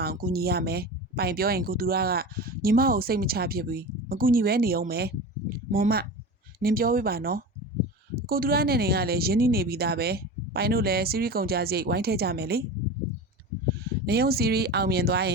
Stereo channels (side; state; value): both; normal; correlation 0.30